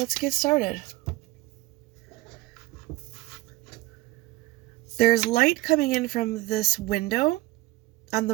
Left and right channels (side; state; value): left; quieter; 19.2 dB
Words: get started. There's light coming in from this window on